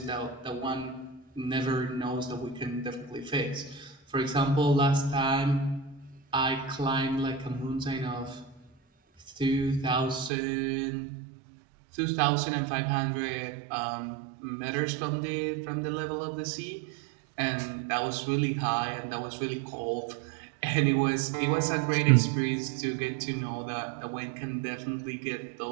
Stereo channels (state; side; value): drops out; left; at 10.3 s